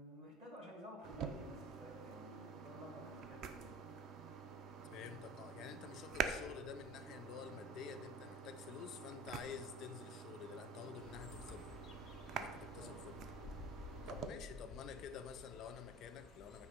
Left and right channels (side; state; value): both; normal; correlation 0.41